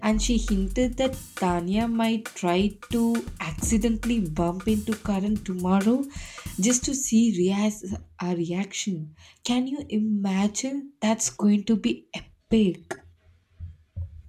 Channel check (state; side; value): identical; both; correlation 1.00